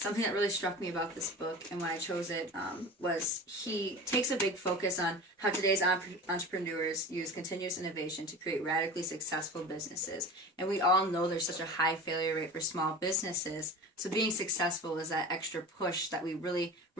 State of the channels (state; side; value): normal; both; correlation 0.34